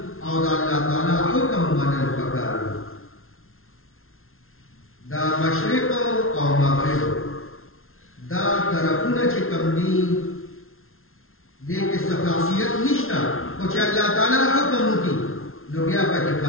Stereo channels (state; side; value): late; right; 0.61 ms